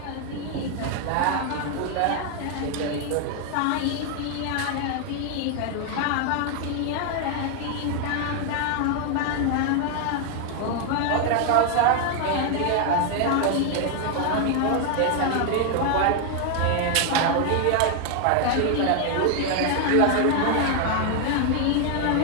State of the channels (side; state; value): both; different; correlation 0.00